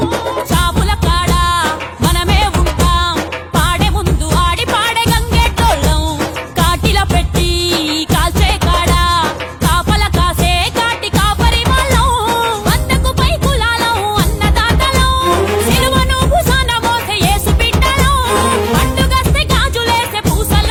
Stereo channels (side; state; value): both; identical; correlation 1.00